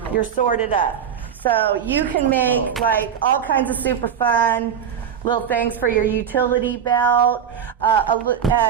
You're sorted up. So you can make like all kinds of super fun little things for your utility belt.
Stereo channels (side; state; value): left; quieter; 8.2 dB